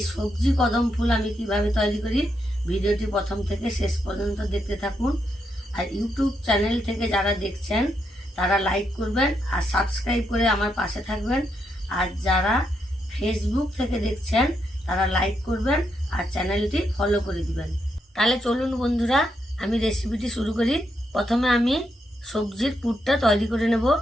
সবজি কদম ফুল আমি কিভাবে তৈরি করি, ভিডিওটি প্রথম থেকে শেষ পর্যন্ত দেখতে থাকুন। আর ইউটিউব চ্যানেল থেকে যারা দেখছেন তারা লাইক করবেন আর সাবস্ক্রাইব করে আমার পাশে থাকবেন। আর যারা ফেসবুক থেকে দেখছেন তারা লাইক করবেন আর চ্যানেলটি ফলো করে দিবেন। তাহলে চলুন বন্ধুরা, আমি রেসিপিটি শুরু করি। প্রথমে আমি সবজির পুরটা তৈরি করে নেব।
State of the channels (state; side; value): normal; both; correlation 0.80